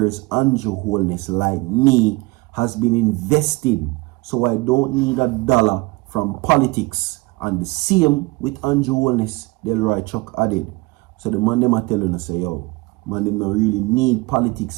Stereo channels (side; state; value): left; quieter; 24.1 dB